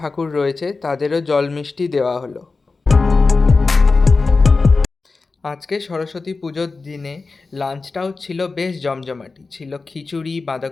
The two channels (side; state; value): right; quieter; 4.0 dB